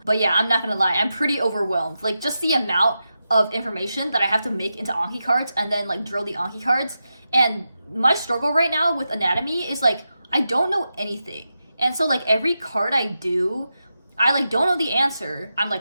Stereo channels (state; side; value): inverted; both; correlation -0.90